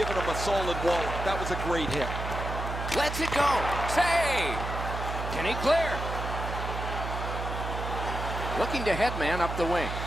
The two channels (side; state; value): right; noise; hum, 5 dB below the sound